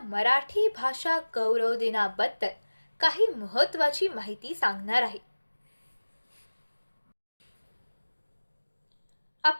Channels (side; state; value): both; inverted; correlation -1.00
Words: भाषा गौरव दिनाबद्दल काही महत्त्वाची माहिती सांगणार आहे.